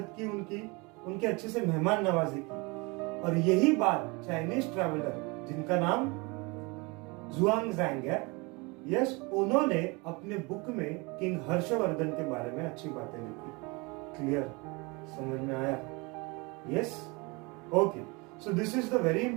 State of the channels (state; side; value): quieter; left; 27.4 dB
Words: की उनके अच्छे से मेहमान नवाजी की। और यही बात चाइनीज ट्रैवलर जिनका नाम जुआंगजैंग है, यस, उन्होंने अपने बुक में किंग हर्षवर्धन के बारे में अच्छी बातें लिखी। क्लियर, समझ में आया? Yes, okay. So this is the very